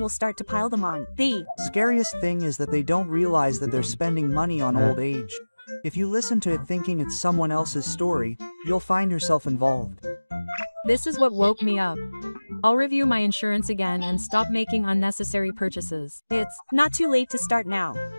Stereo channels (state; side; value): inverted; both; correlation -1.00